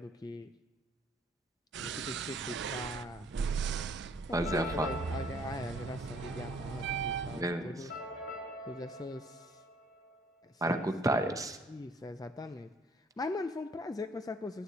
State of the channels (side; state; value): both; normal; correlation 0.60